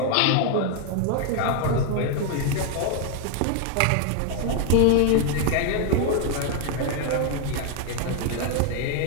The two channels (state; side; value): different; both; correlation 0.00